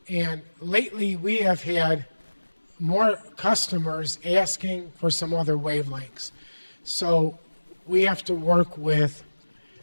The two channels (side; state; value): both; inverted; correlation -1.00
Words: And lately we have had more customers asking for some other wavelengths. So we have to work with,